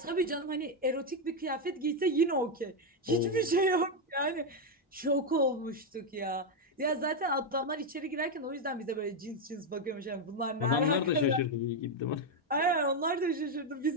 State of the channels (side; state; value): both; normal; correlation 0.04